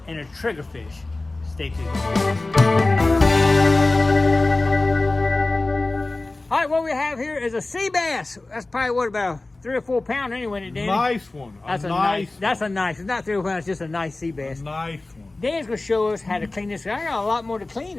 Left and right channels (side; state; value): right; quieter; 3.1 dB